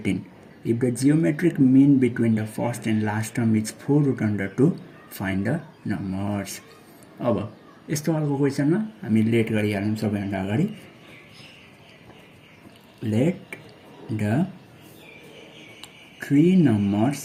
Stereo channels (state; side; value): identical; both; correlation 1.00